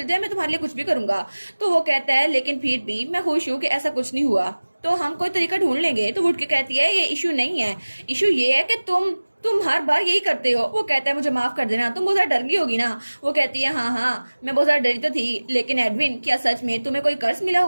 जाए मैं तुम्हारे लिए कुछ भी करूंगा। तो वो कहता है लेकिन फिर भी मैं खुश हूँ कि ऐसा कुछ नहीं हुआ, तो हम कोई तरीका ढूंढ लेंगे। तो वो उठ के कहती है ये इशू नहीं है, इशू ये है कि तुम हर बार यही करते हो। वो कहता है मुझे माफ कर देना, तुम बहुत ज्यादा डर गई होगी ना। वो कहती है हाँ हाँ मैं बहुत ज्यादा डरी तो थी, लेकिन एडविन क्या सच में तुम्हें कोई कर्ज मिला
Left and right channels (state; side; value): inverted; both; correlation -1.00